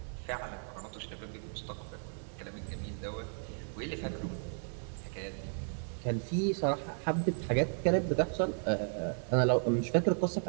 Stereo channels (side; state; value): left; silent; 55 dB below the other